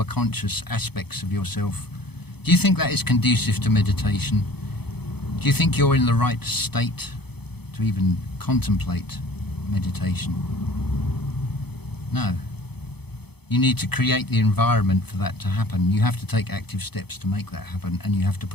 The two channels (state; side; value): late; right; 0.98 ms